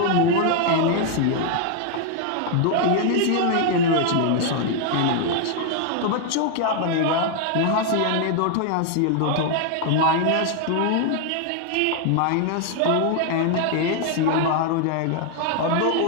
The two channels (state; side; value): different; both; correlation 0.00